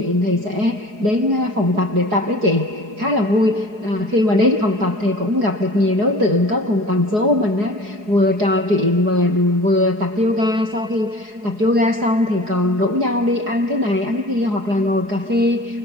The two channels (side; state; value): left; late; 4.8 ms